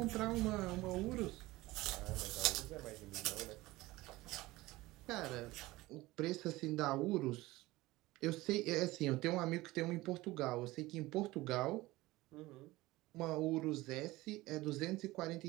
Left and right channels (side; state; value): left; quieter; 19.3 dB